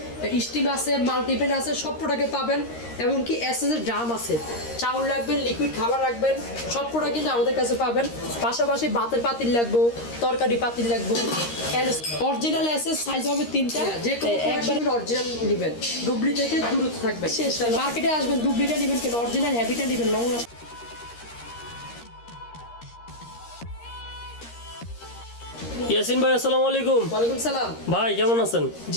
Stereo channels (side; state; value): right; late; 13 ms